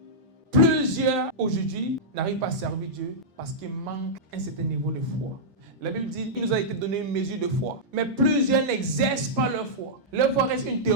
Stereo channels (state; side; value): normal; both; correlation -0.10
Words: Plusieurs aujourd'hui n'arrivent pas à servir Dieu parce qu'il manque un certain niveau de foi. La Bible dit qu'il nous a été donné une mesure de foi. Mais plusieurs n'exercent pas leur foi. Leur foi reste une